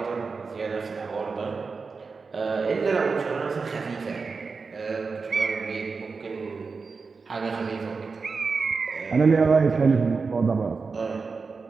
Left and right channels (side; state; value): left; quieter; 4.7 dB